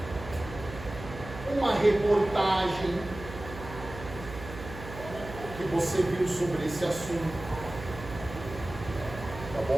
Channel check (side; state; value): right; noise; hum, 12 dB below the sound